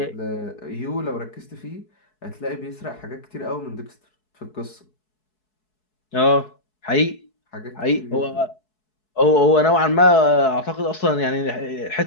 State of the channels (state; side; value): late; right; 4.7 ms